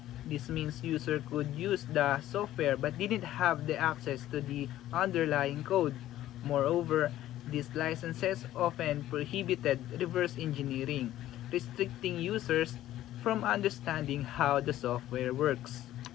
This means user could use the software but didn't have the access to the underlying code. Moreover, these licenses often prohibited reverse engineering, restricting users from understanding how the software works.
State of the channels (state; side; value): quieter; right; 13.7 dB